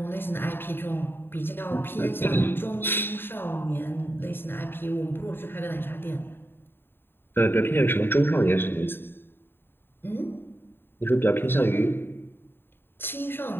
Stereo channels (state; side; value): late; right; 0.10 ms